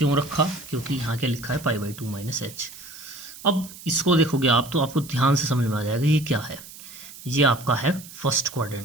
रखा? क्योंकि यहाँ क्या लिखा है? पाई/2 माइनस h। अब इसको देखोगे आप तो आपको ध्यान से समझ में आ जाएगा ये क्या है। ये आपका है फर्स्ट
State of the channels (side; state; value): right; noise; hiss, 16 dB below the sound